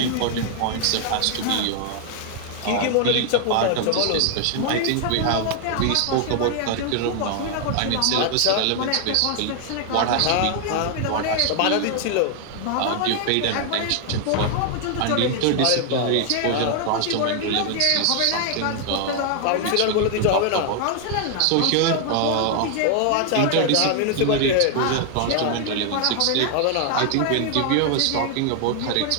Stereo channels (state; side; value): different; both; correlation 0.00